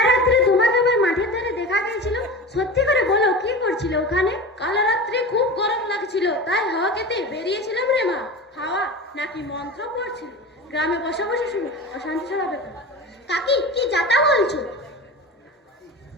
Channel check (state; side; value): normal; both; correlation 0.30